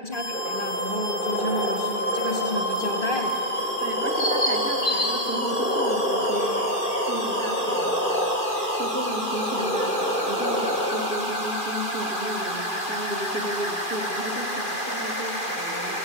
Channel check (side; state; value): right; late; 2.4 ms